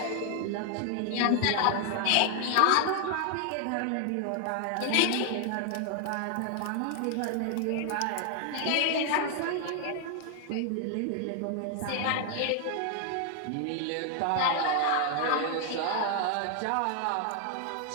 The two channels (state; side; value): different; both; correlation 0.00